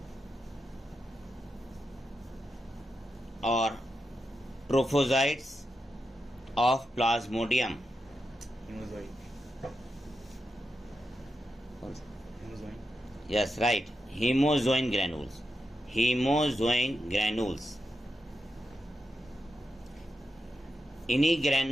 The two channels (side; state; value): both; normal; correlation 0.87